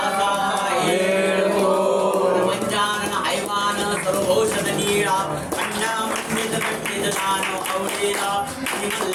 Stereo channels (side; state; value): both; identical; correlation 1.00